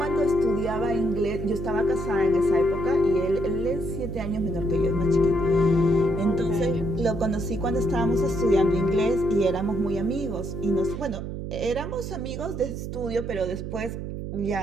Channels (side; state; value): right; noise; hum, 6 dB below the sound